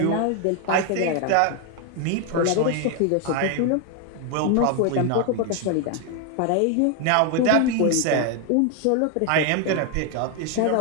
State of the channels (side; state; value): both; different; correlation 0.01